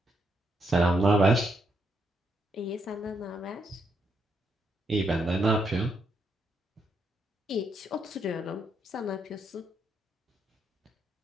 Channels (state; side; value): normal; both; correlation 0.77